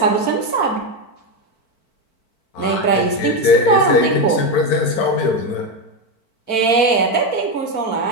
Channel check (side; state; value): right; late; 4.5 ms